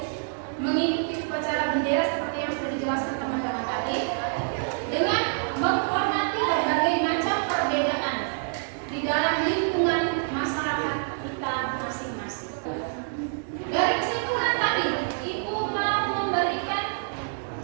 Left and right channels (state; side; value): silent; left; 60 dB below the other